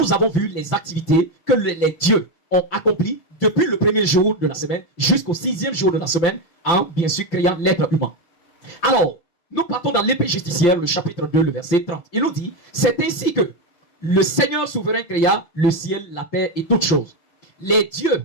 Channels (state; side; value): late; right; 5.8 ms